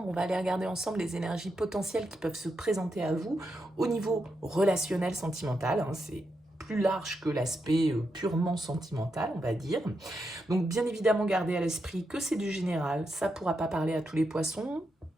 On va aller regarder ensemble les énergies potentielles qui peuvent se présenter à vous au niveau relationnel sentimental, hein. C'est plus large que l'aspect purement sentimental, on va dire. Donc bien évidemment, gardez à l'esprit que c'est du général, ça ne pourra pas parler à tous les poissons,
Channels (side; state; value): both; normal; correlation 0.84